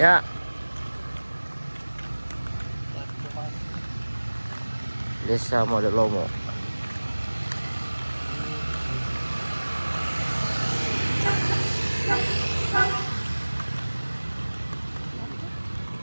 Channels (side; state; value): both; inverted; correlation -1.00